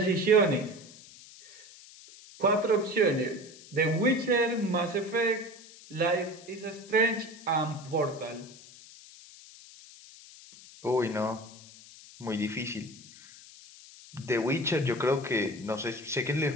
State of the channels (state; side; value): noise; left; hiss, 20 dB below the sound